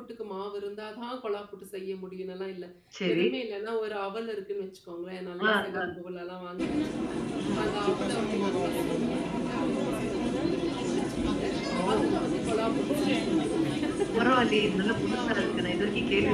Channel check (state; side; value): identical; both; correlation 1.00